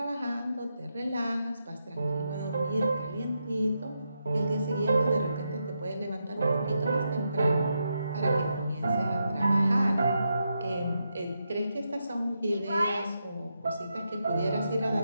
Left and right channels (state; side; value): inverted; both; correlation -0.84